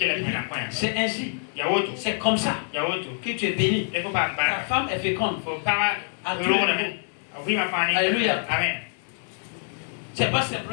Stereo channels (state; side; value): silent; right; 61 dB below the other